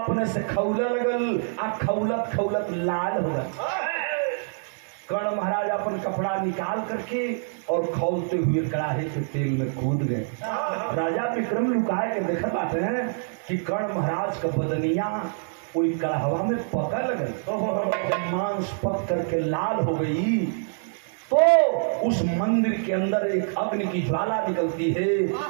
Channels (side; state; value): left; silent; digital silence